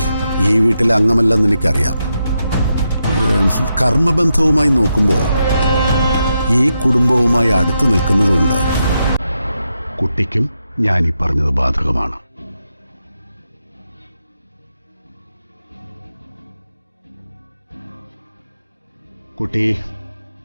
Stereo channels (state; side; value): inverted; both; correlation -0.85